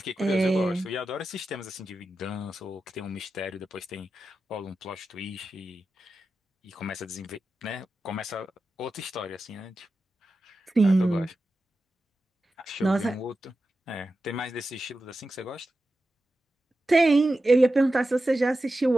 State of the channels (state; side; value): normal; both; correlation 0.92